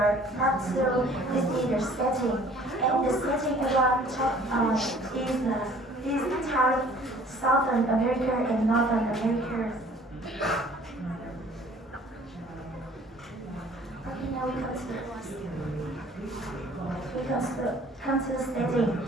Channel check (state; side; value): normal; both; correlation 0.53